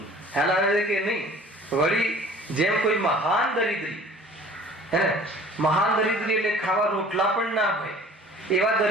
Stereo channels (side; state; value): both; normal; correlation 0.48